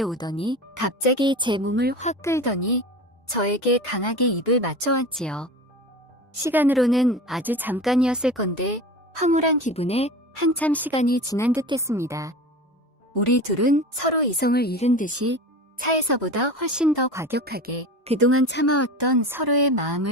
오더니 갑자기 제 몸을 확 끌더니 저에게 강하게 입을 맞춰왔지요. 시간으로는 아주 잠깐이었을 건데 황홀한 기분에 한참 시간이 지난 듯했습니다. 우리 둘은 서로 이성을 잃은 듯이 차에서보다 훨씬 더 과격하게 그동안 참아왔던 서로의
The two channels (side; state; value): both; normal; correlation 0.32